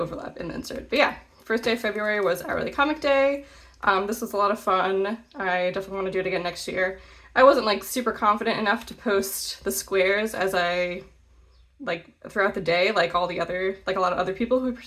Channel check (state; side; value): identical; both; correlation 1.00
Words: in the insert. But yeah, first day of February was Hourly Comic Day. This was a lot of fun. I definitely want to do it again next year. I wasn't like super confident enough to post the squares as I like throughout the day, like a lot of other people who